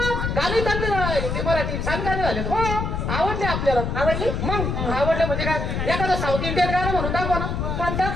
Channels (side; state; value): left; noise; rumble, 2 dB below the sound